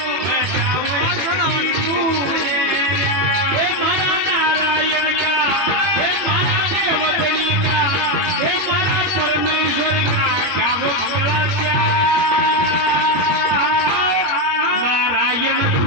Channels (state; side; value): late; left; 22 ms